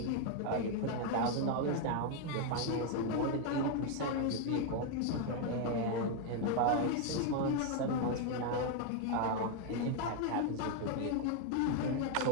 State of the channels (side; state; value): both; different; correlation 0.01